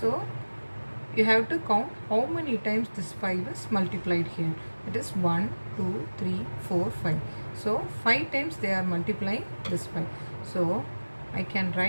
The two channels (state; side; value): inverted; both; correlation -1.00